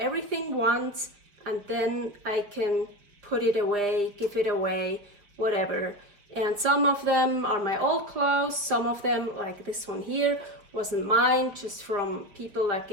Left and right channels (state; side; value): late; left; 5.2 ms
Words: once and then I can put it away, give it away, whatever. And some of them are my old clothes, some of them, like this one here, wasn't mine, just from people that